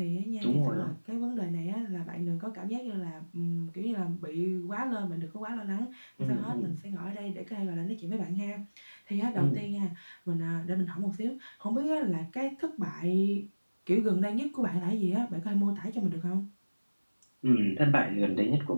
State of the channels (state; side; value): inverted; both; correlation -1.00